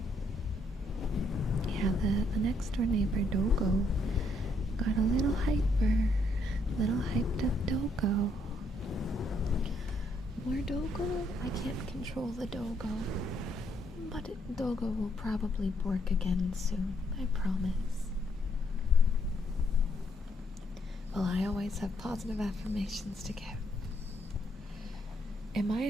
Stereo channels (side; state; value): both; normal; correlation 0.73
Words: Yeah, the next door neighbor, Dogo, got a little hyped up Dogo. More Dogo? I can't control the Dogo. But Dogo will probably bork again soon, I promise. Well, I always have positive affirmations to give. Am I